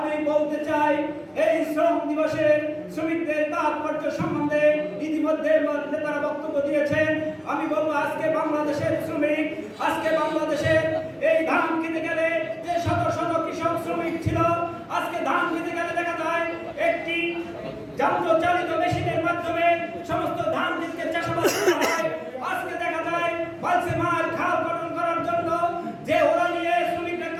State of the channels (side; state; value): both; identical; correlation 1.00